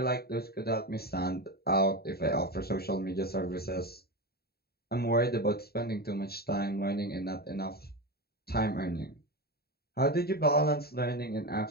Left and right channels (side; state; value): right; late; 0.45 ms